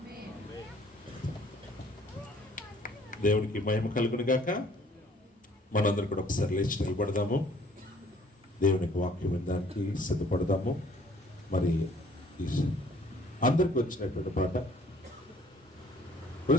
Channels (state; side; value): normal; both; correlation 0.58